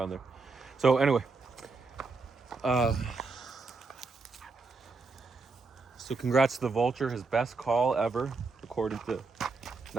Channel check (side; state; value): left; quieter; 4.0 dB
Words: there. So anyway, so congrats to the Vulture, his best call ever, according to